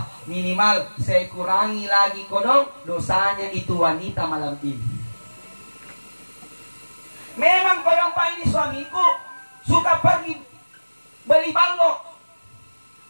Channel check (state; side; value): inverted; both; correlation -1.00